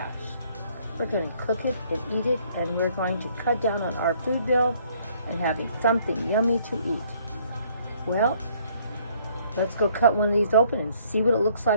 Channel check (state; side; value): inverted; both; correlation -0.63